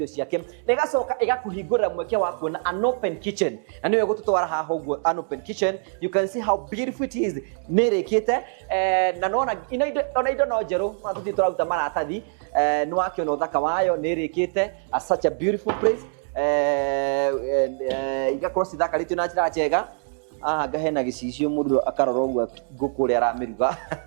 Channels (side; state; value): left; silent; 62 dB below the other